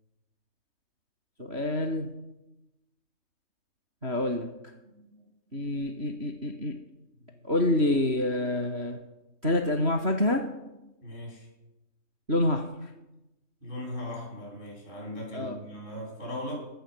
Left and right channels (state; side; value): late; left; 3.0 ms